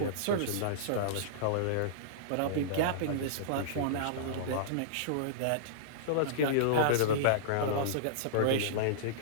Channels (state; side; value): different; both; correlation -0.03